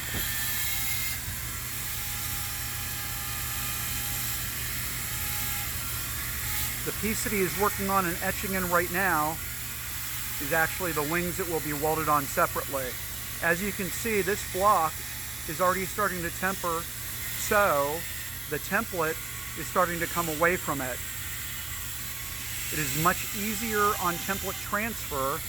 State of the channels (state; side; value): quieter; left; 3.4 dB